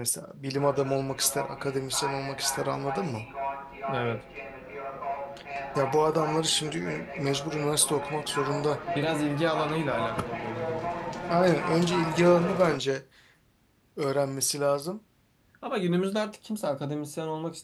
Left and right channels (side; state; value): both; identical; correlation 1.00